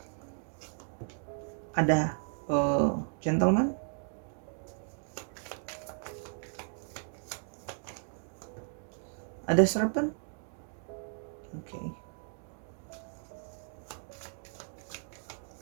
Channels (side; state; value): left; silent; 54 dB below the other